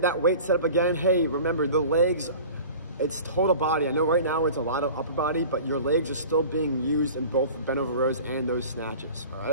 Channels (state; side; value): inverted; both; correlation -0.41